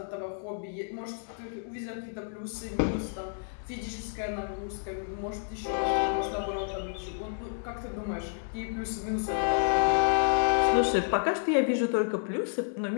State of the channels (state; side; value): silent; right; digital silence